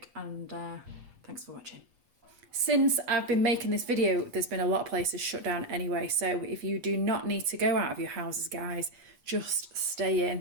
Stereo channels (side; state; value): left; late; 8.3 ms